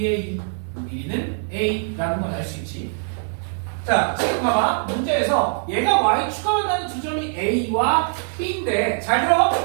요 길이는 a라는 걸 알 수 있지. 자, 지금 봐봐. 문제에서 얘가 y 추가 만나는 두 점이 a와 b인데 잘 들어.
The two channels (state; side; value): silent; left; digital silence